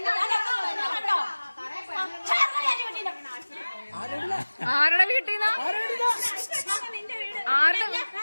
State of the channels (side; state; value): both; inverted; correlation -1.00